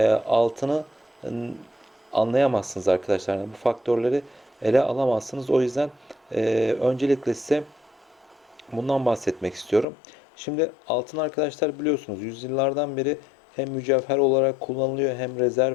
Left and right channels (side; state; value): right; drops out; at 9.9 s